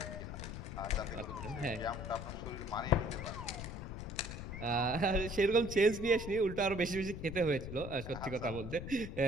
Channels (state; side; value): noise; left; rumble, 8 dB below the sound